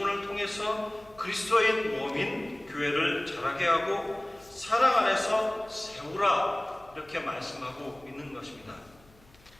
통해서 그리스도인 몸인 교회를 자라게 하고 사랑 안에서 세우라, 이렇게 말씀하고 있는 것입니다.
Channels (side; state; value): left; noise; hum, 28 dB below the sound